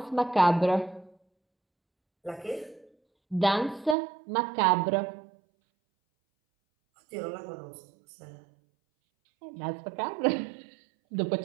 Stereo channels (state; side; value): drops out; left; at 4.0 s